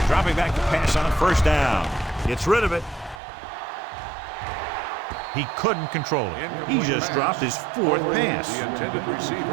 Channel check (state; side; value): drops out; left; at 3.2 s